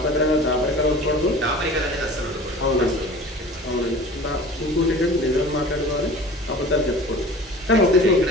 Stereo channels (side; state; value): both; normal; correlation 0.41